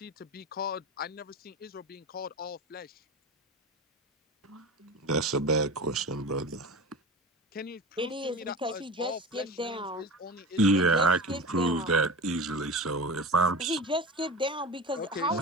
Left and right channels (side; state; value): both; normal; correlation 0.30